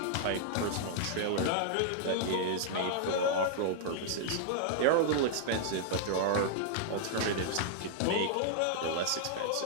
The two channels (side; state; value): both; different; correlation -0.01